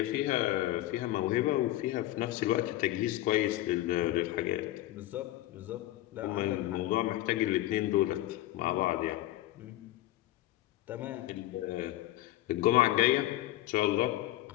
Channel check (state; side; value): quieter; right; 15.5 dB